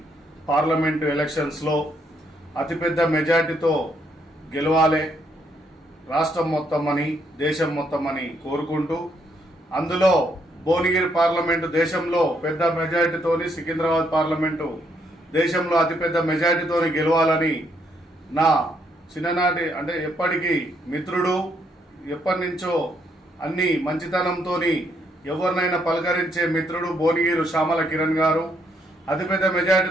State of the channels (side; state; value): both; normal; correlation 0.73